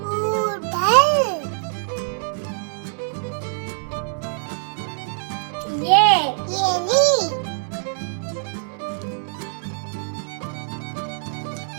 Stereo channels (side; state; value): left; silent; 63 dB below the other